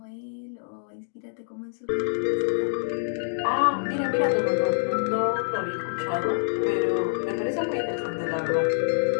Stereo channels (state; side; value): silent; right; digital silence